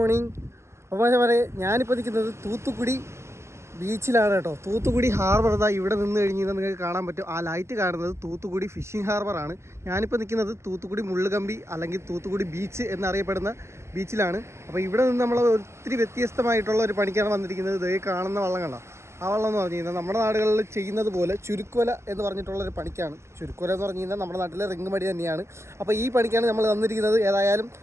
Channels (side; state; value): left; late; 0.13 ms